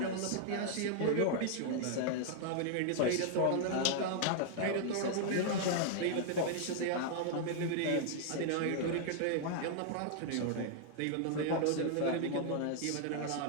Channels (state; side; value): different; both; correlation 0.00